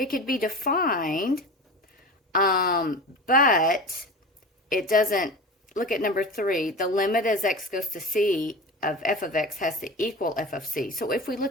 could be defined, but it doesn't. Look at number 3. The limit as x goes to c of f of x has to equal f of c. So if we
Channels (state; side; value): normal; both; correlation 0.31